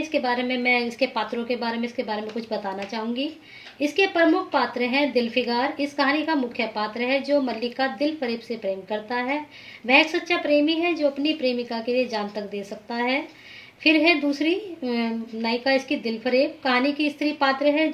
मैं इसके पात्रों के बारे में इसके बारे में कुछ बताना चाहूंगी। इसके प्रमुख पात्र हैं दिलफिगार। इस कहानी का मुख्य पात्र है जो मल्लिका दिल फरेब से प्रेम करता है। वह एक सच्चा प्रेमी है जो अपनी प्रेमिका के लिए जान तक दे सकता है। फिर है दूसरी नायिका इसकी दिलफरेब। कहानी की स्त्री पात्र है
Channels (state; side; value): identical; both; correlation 1.00